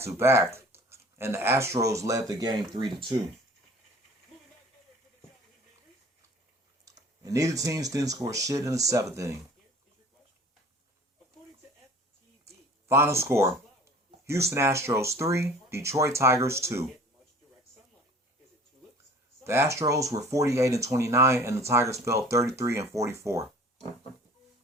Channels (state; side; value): normal; both; correlation 0.47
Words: and the Astros led the game 3-2. And neither teams didn't score shit in the seventh inning. Final score: Houston Astros 3, Detroit Tigers 2. The Astros were 48-29, and the Tigers fell 33-44.